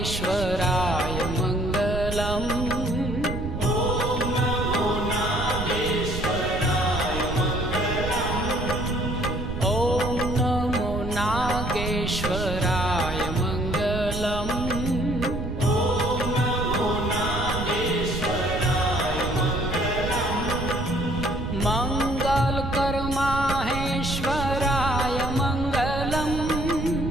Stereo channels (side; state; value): right; noise; rumble, 5 dB below the sound